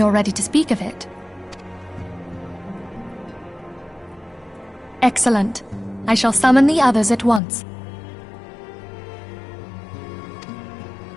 ready to speak of it. Excellent. I shall summon the others at once.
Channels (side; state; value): right; drops out; at 7.4 s